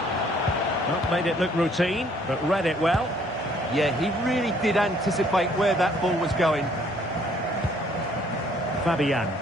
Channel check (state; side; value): normal; both; correlation 0.62